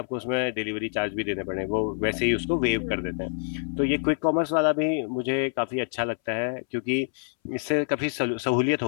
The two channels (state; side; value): silent; right; 60 dB below the other